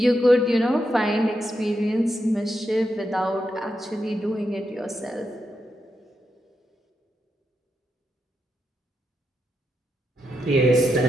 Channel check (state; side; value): normal; both; correlation 0.85